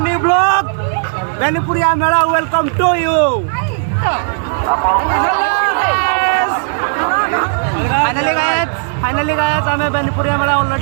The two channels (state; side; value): silent; left; digital silence